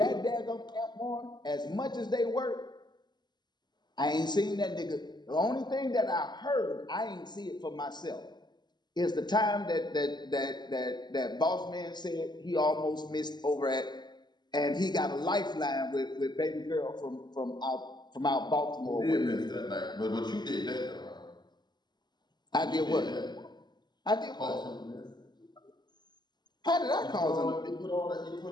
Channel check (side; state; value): right; late; 0.21 ms